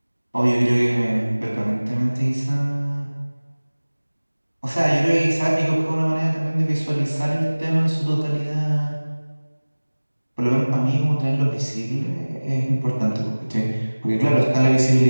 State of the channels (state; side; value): inverted; both; correlation -1.00